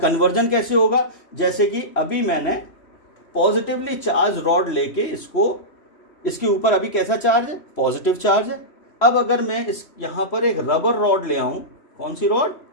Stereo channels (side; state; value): right; late; 3.1 ms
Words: कैसे होगा, जैसे कि अभी मैंने पॉजिटिवली चार्ज रॉड लेके इसके ऊपर अभी कैसा चार्ज है, पॉजिटिव चार्ज है। अब अगर मैं यहां पर एक रबर रॉड ले आऊं, कौन सी rod,